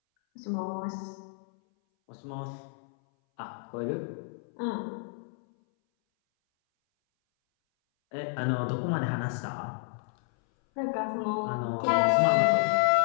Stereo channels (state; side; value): silent; right; 58 dB below the other